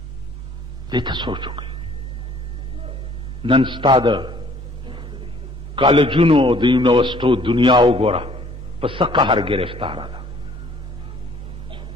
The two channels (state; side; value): normal; both; correlation 0.58